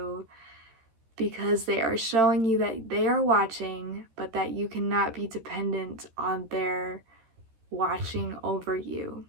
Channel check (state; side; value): late; left; 13 ms